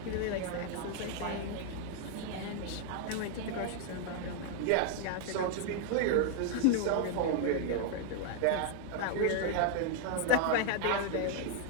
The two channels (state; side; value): different; both; correlation 0.00